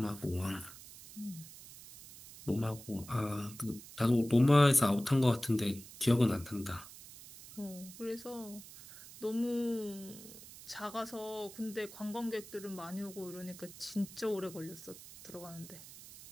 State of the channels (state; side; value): noise; right; hiss, 16 dB below the sound